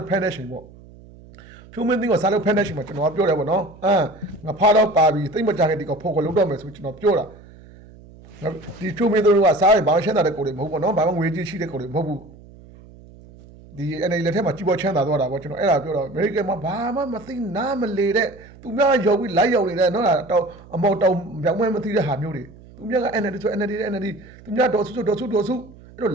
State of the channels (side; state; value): right; noise; hum, 22 dB below the sound